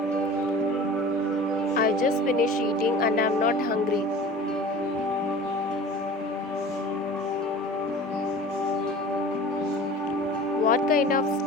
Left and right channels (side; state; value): both; normal; correlation 0.40